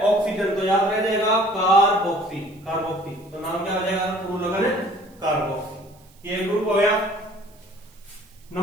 ऑक्सीजन, तो याद रह जाएगा कार्बोक्सी, कार्बोक्सी। तो नाम क्या हो जाएगा? पूर्व लगन कार्बोक्सी। ये ग्रुप हो गया।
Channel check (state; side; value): noise; right; hiss, 29 dB below the sound